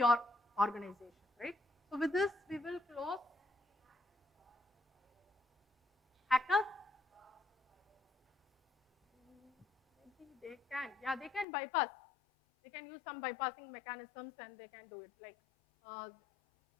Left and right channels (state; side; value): drops out; right; at 11.5 s